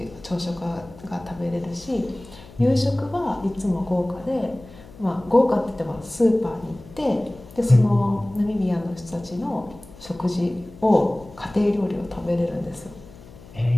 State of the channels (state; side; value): noise; left; hum, 20 dB below the sound